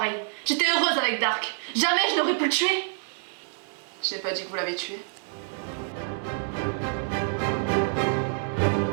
J'étais heureuse avec Dark. Jamais je n'aurais pu le tuer. Je n'ai pas dit que vous l'avez tué.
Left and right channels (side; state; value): left; silent; digital silence